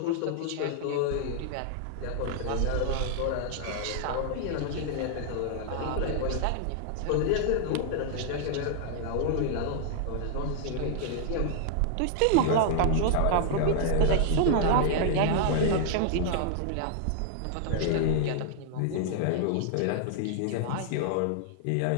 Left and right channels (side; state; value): both; different; correlation -0.01